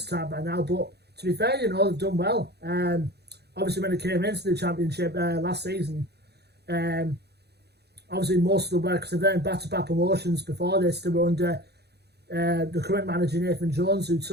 time by now. But to be fair, they've done well. Obviously, when they came into the Championship last season, obviously most of the work, because they've done back-to-back promotions before this, they were under the current manager Nathan Jones, who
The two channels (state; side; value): late; left; 0.48 ms